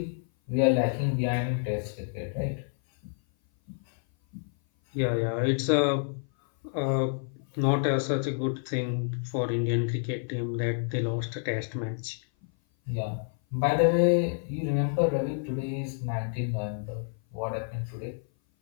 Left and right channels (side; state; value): right; silent; 56 dB below the other